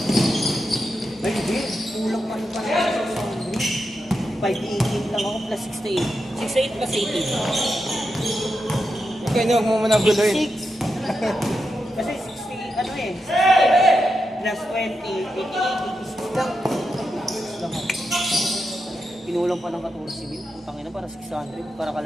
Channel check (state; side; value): normal; both; correlation 0.87